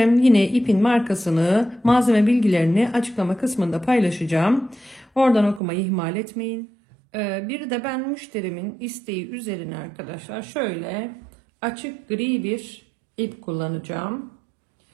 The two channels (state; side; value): drops out; left; at 5.6 s